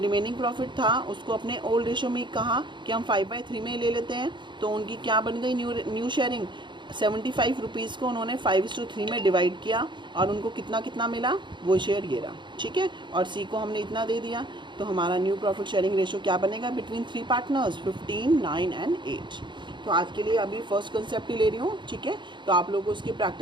प्रॉफिट था उसको अपने ओल्ड रेशो में कहा कि हम 5/3 में ले लेते हैं। तो उनकी क्या बन गई? New sharing. 75 रुपीज़ को उन्होंने 5:3 में डिवाइड किया और उनको कितना कितना मिला? वो शेयर ये रहा, ठीक है। और सी को हमने इतना दे दिया। तो हमारा न्यू प्रॉफिट शेयरिंग रेशो क्या बनेगा? Between 3 partners 15, 9 and 8। तो आज के लिए अभी फर्स्ट कंसेप्ट ही ले रही हूँ, ठीक है। तो आप लोगों को उसकी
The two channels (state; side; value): late; left; 0.23 ms